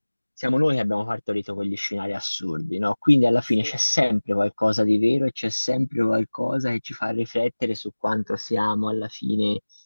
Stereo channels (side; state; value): both; inverted; correlation -1.00